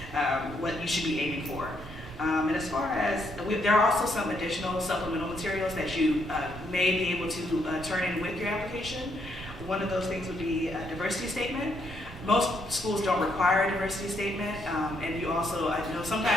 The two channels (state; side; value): normal; both; correlation 0.74